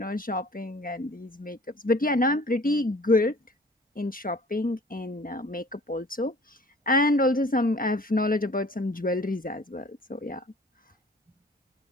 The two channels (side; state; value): both; normal; correlation 0.49